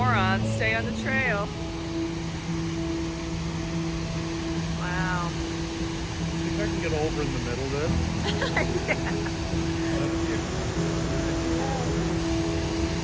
Stay on the trail. Wow. See if I can get over in the middle there.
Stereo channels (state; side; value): identical; both; correlation 1.00